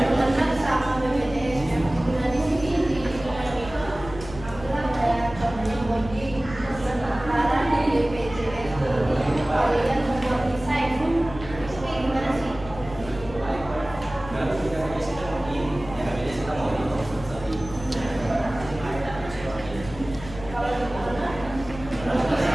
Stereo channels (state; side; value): noise; left; hum, 14 dB below the sound